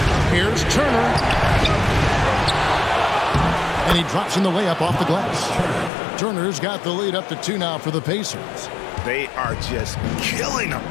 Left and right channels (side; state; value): right; drops out; at 5.9 s